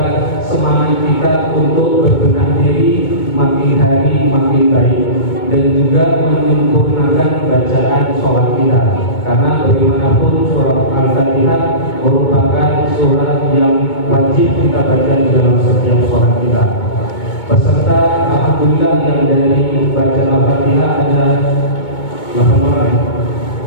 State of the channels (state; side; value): late; right; 2.2 ms